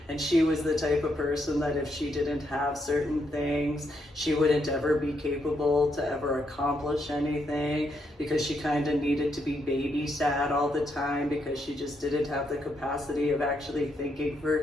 And she was the type of person that if she didn't have certain things, she wouldn't ever be capable to ever accomplish anything, because she kind of needed to be babysat all the time because she just didn't have the capacity of actually thinking for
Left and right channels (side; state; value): both; normal; correlation 0.78